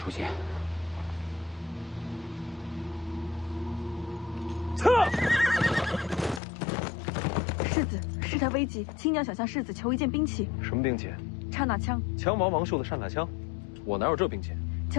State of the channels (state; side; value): drops out; right; at 6.4 s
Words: 现。撤！世子，事态危急，亲娘想向世子求一件兵器。什么兵器？刹那枪。枪王王寿的刹那枪，我哪有这兵器？